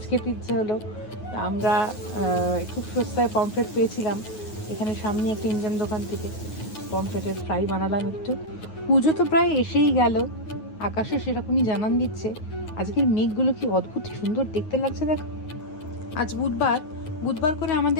খেতে ইচ্ছে হলো। আমরা খুব সস্তায় পমফ্রেট পেয়েছিলাম এখানে সামনে একটা ইন্ডিয়ান দোকান থেকে। পমফ্রেটের ফ্রাই বানালাম একটু। পুজো তো প্রায় এসেই গেল, আকাশে সেরকমই জানান দিচ্ছে। আজকের মেঘগুলো কি অদ্ভুত সুন্দর দেখতে লাগছে দেখো। আজ বুধবার, বুধবার করে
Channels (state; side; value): late; right; 9.4 ms